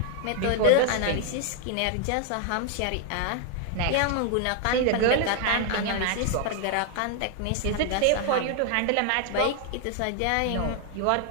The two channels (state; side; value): different; both; correlation 0.00